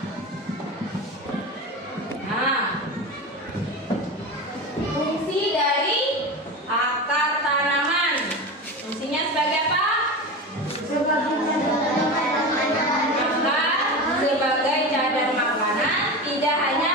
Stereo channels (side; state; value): both; normal; correlation 0.26